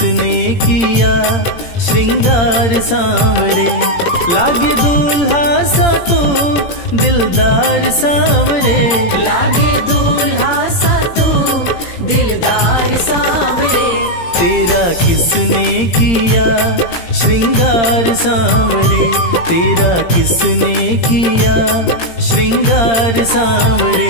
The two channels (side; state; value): right; late; 17 ms